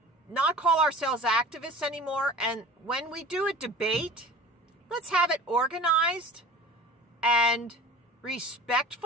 not call ourselves activists anymore. And when we do a debate, let's have it organized and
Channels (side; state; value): both; normal; correlation 0.39